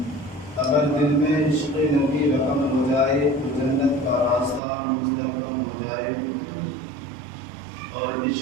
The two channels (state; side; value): drops out; left; at 4.6 s